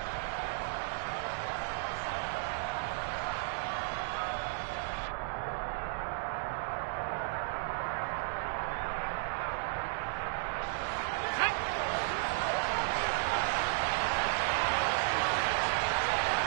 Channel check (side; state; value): left; silent; digital silence